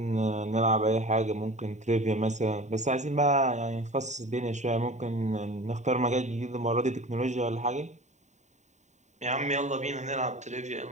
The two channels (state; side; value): late; left; 0.34 ms